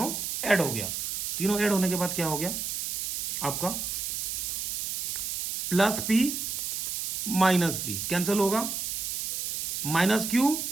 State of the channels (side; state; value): right; noise; hiss, 2 dB below the sound